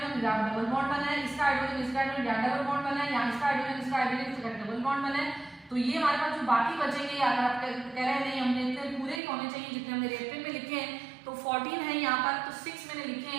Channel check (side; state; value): left; drops out; at 9.2 s